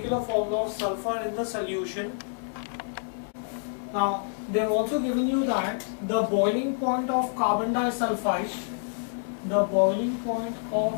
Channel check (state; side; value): silent; right; digital silence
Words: formula of sulfur in the solution? Now, they've also given you that the boiling point of carbon disulfide,